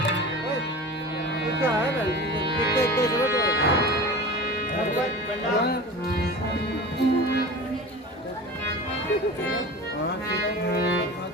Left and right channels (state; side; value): normal; both; correlation 0.34